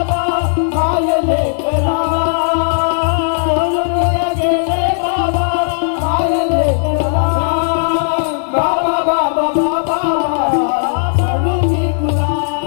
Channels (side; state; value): right; silent; digital silence